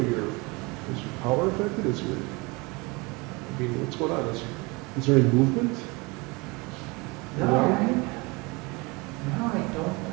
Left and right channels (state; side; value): quieter; left; 26.4 dB